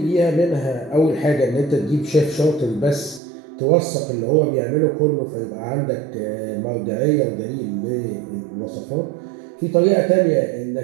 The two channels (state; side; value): drops out; left; at 3.2 s